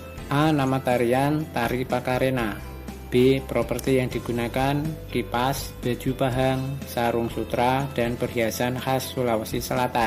A. Nama tarian Tari Pakarena. B. Properti yang digunakan kipas, baju pahang, sarung sutra, dan perhiasan khas Sulawesi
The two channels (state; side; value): identical; both; correlation 1.00